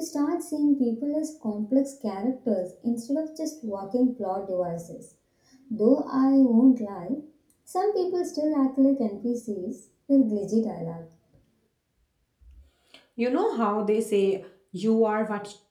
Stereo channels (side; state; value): both; identical; correlation 1.00